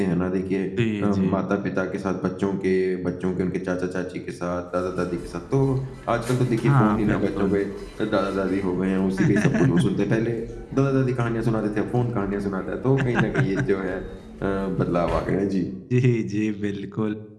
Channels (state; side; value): identical; both; correlation 1.00